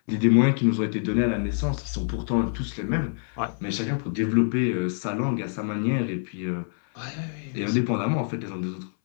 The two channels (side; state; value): right; silent; 60 dB below the other